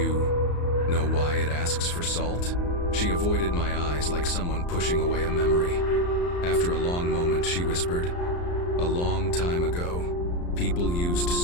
know why it asks for salt?" She avoided my eyes like someone pushing away a memory. After a long moment, she whispered, "A long time ago, people used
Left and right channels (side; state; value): right; late; 34 ms